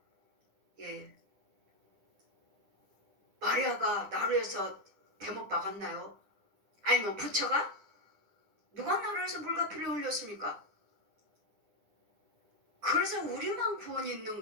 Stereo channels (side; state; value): left; late; 9.9 ms